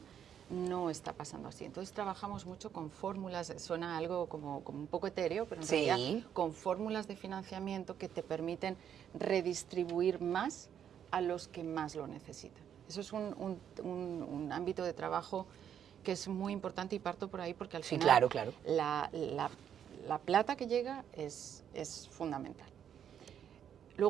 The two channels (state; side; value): quieter; left; 9.0 dB